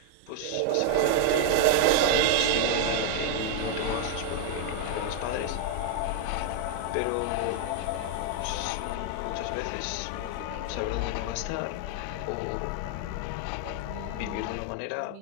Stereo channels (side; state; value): both; different; correlation 0.00